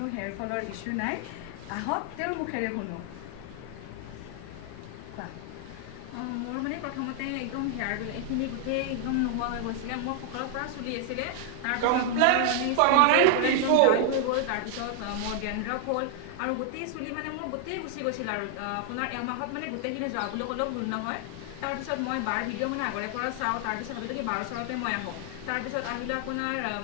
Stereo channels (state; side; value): different; both; correlation 0.00